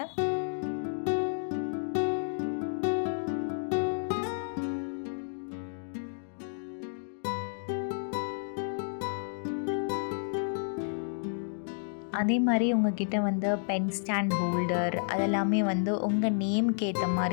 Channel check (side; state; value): right; silent; digital silence